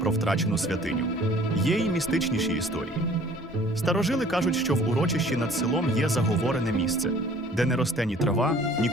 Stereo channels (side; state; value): both; normal; correlation 0.53